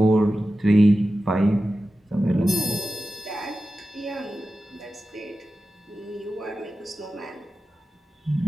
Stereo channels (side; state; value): both; normal; correlation 0.93